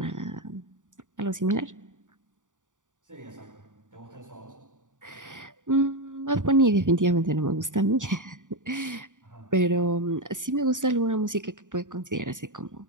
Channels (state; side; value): late; left; 0.87 ms